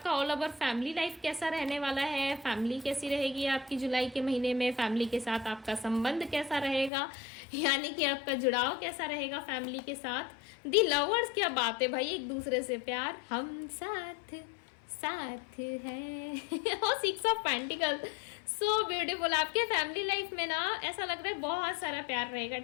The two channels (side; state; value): right; drops out; at 6.9 s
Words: ऑल ओवर फैमिली लाइफ कैसा रहने वाला है, फैमिली कैसी रहेगी आपकी जुलाई के महीने में, फैमिली के साथ आपका संबंध कैसा रहेगा, यानी कि आपका जुड़ाव कैसा रहेगा फैमिली के साथ। दी लवर्स, क्या बात है भाई, एक दूसरे से प्यार, हम साथ साथ है। और 6 ऑफ पेंटिकल, सो ब्यूटीफुल। आपके फैमिली लाइफ में ना ऐसा लग रहा है बहुत सारा प्यार रहेगा।